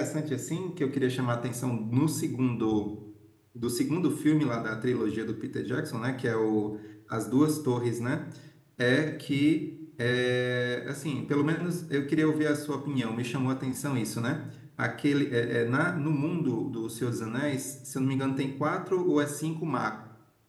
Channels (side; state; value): both; identical; correlation 1.00